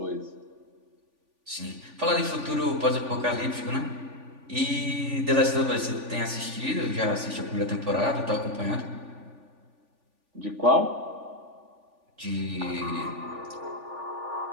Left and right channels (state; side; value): late; left; 3.5 ms